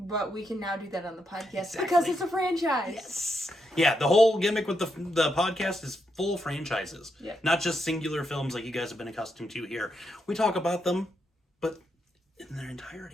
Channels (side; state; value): both; normal; correlation 0.81